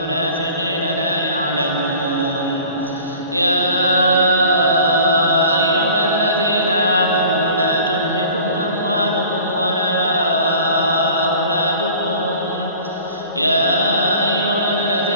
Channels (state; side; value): inverted; both; correlation -0.46